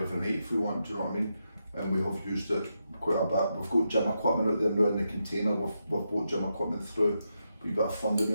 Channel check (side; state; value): both; inverted; correlation -0.85